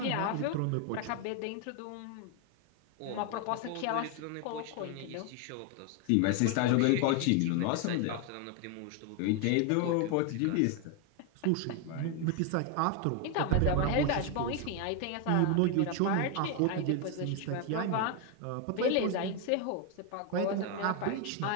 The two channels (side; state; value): both; different; correlation 0.01